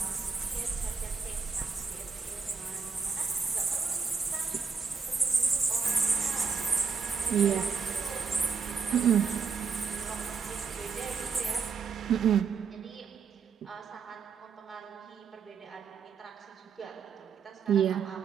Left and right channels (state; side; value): quieter; left; 5.5 dB